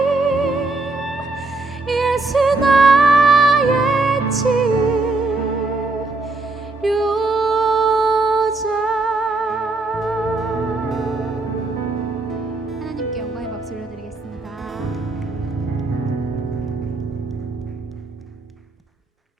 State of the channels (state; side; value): quieter; left; 3.3 dB